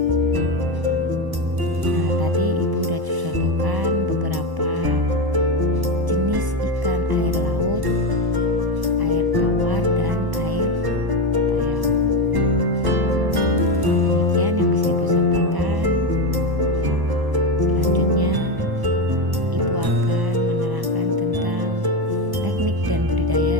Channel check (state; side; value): late; left; 1.0 ms